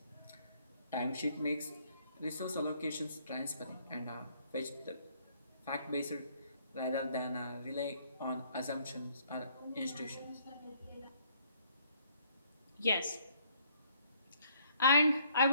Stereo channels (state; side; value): inverted; both; correlation -0.65